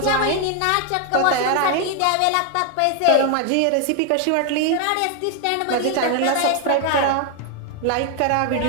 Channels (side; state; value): both; different; correlation 0.01